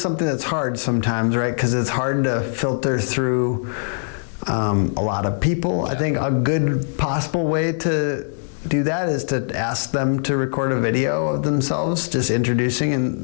that's hard sometimes, right? Because it's hard to filter through a lot of people. Yeah. I think a good possible way to do that is to ask them to record a video of themselves just introducing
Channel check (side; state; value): right; silent; 65 dB below the other